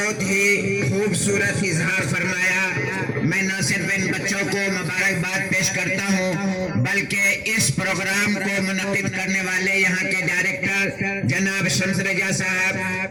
ہی خوبصورت اظہار فرمایا۔ میں نہ صرف ان بچوں کو مبارکباد پیش کرتا ہوں بلکہ اس پروگرام کو منعقد کرنے والے یہاں کے ڈائریکٹر جناب شمس رجا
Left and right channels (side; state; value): both; identical; correlation 1.00